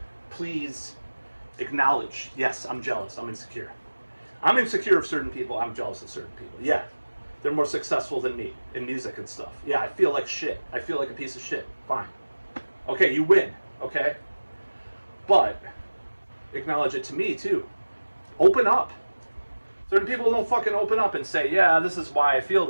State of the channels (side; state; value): both; inverted; correlation -1.00